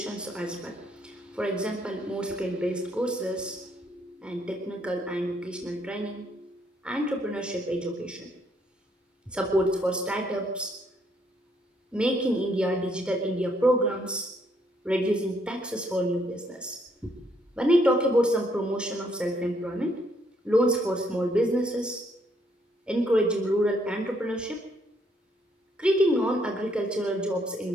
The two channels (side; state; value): both; normal; correlation 0.71